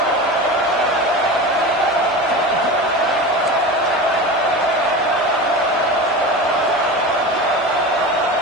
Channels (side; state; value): both; normal; correlation 0.28